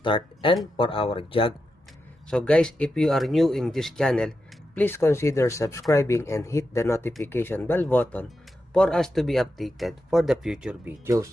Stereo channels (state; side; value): normal; both; correlation 0.88